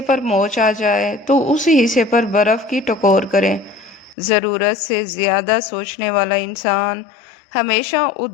پر موچ آ جائے تو اس حصے پر برف کی ٹکور کریں۔ ضرورت سے زیادہ سوچنے والا انسان ہمیشہ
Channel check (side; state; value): right; drops out; at 4.2 s